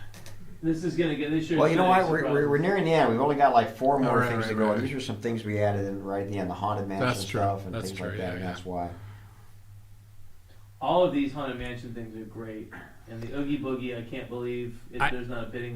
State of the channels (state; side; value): identical; both; correlation 1.00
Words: This is gonna get this. Well, you know what? We're nearing the end. We've only got like 4 more Right, things right, to go. right. And these are some things we added in right at the end, the Haunted Mansion That's true. stuff and That's things true, like that, yeah, and yeah. that's why. All of these Haunted Mansion things are great. And the Oogie Boogie, I can't believe there's not a